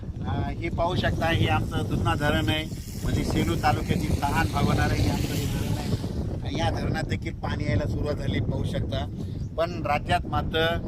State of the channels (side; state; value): both; identical; correlation 1.00